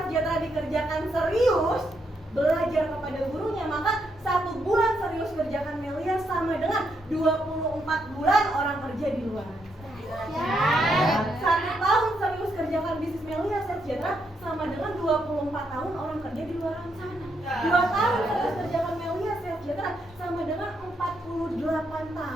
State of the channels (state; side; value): normal; both; correlation 0.78